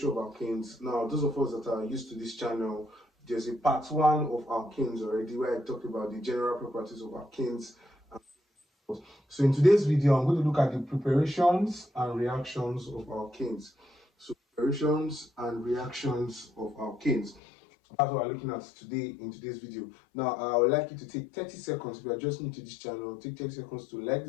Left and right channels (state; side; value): drops out; right; at 17.4 s